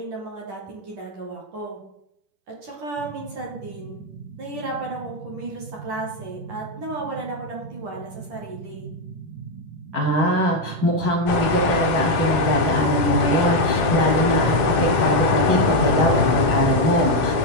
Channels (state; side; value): late; left; 10 ms